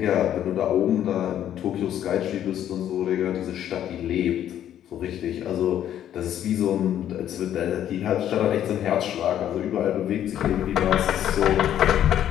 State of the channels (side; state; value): right; quieter; 10.8 dB